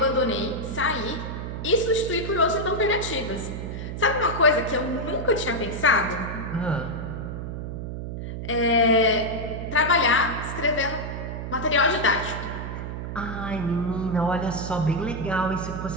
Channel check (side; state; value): right; noise; hum, 6 dB below the sound